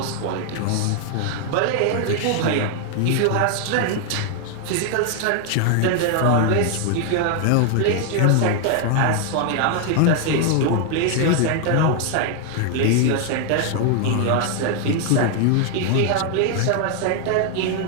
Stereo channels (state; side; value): different; both; correlation 0.00